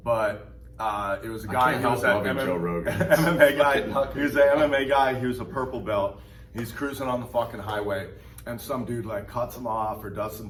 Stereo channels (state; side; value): identical; both; correlation 1.00